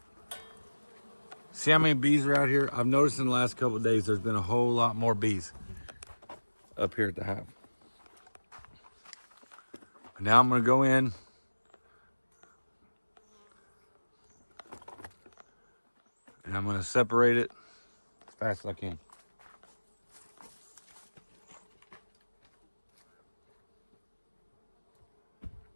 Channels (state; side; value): inverted; both; correlation -1.00